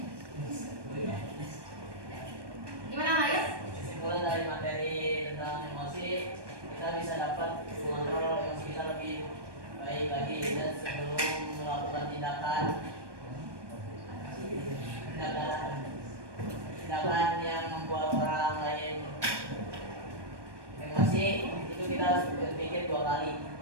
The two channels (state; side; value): late; left; 1.2 ms